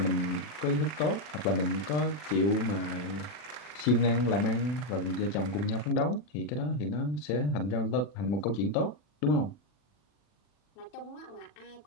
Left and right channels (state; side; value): late; right; 39 ms